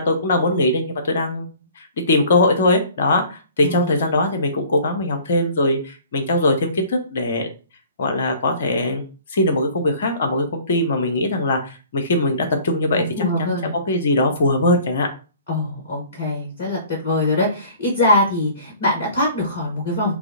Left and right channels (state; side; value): inverted; both; correlation -0.50